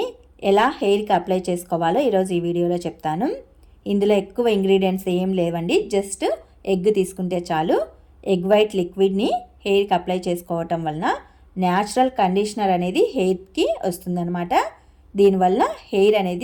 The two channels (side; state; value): both; identical; correlation 1.00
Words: ఎలా హెయిర్కి అప్లై చేసుకోవాలో ఈరోజు ఈ వీడియోలో చెప్తాను. ఇందులో ఎక్కువ ఇంగ్రీడియంట్స్ ఏం లేవండి, జస్ట్ ఎగ్ తీసుకుంటే చాలు. ఎగ్ వైట్ లిక్విడ్ని హెయిర్కి అప్లై చేసుకోవటం వలన న్యాచురల్ కండిషనర్ అనేది హెయిర్కి వస్తుందన్నమాట. దీనివల్ల హెయిర్